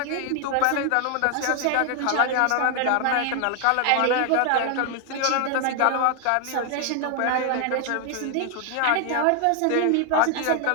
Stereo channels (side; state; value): both; different; correlation 0.00